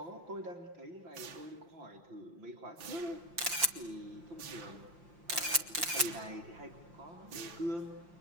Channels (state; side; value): late; left; 5.7 ms